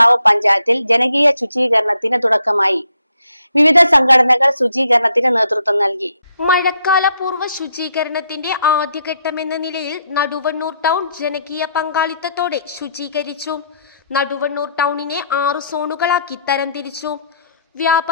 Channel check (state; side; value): inverted; both; correlation -0.72